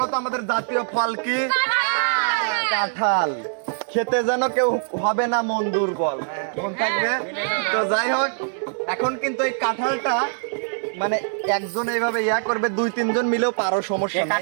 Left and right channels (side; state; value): left; silent; digital silence